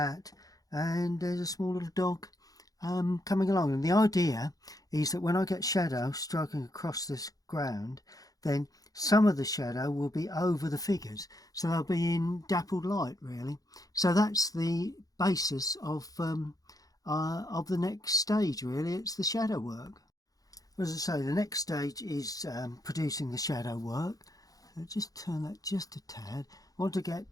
and there's a small little dog coming along. And the idea is that when I get shadow striking across this ground, then some of the shadow will be over the figures, so they'll be in dappled light, really. So that's the basis of the next stage, really. It's the shadow work. As I say, the next stage is producing the shadow work. So just turn that just a tad. I want to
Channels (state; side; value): late; right; 0.17 ms